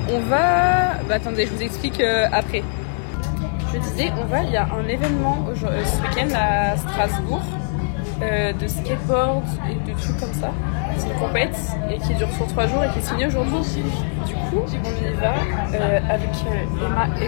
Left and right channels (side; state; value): right; silent; 65 dB below the other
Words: On va... Bah, attendez, je vous explique après. Je disais, il y a un événement ce week-end à Strasbourg de skateboard et de trucs comme ça. C'est une compète et qui dure sur 3 jours et qui est signée aujourd'hui. Du coup, on y va avec Emma